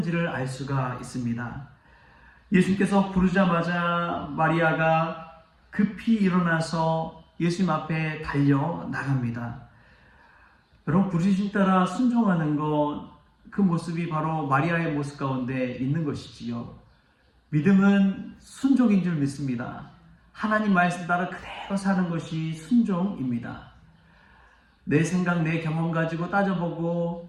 알 수가 있습니다. 예수님께서 부르자마자 마리아가 급히 일어나서 예수님 앞에 달려 나갑니다. 여러분, 부르심 따라 순종하는 것, 그 모습이 바로 마리아의 모습 가운데 있는 것이지요. 믿음은 순종인 줄 믿습니다. 하나님 말씀 따라 그대로 사는 것이 순종입니다. 내 생각, 내 경험 가지고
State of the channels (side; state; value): both; identical; correlation 1.00